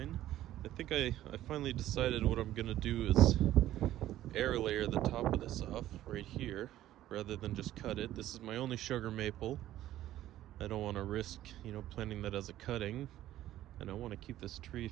I think I finally decided what I'm gonna do is air layer the top of this off right here rather than just cut it. This is my only sugar maple. I don't want to risk, planting that as a cutting, and I want to keep this tree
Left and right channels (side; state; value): left; quieter; 13.6 dB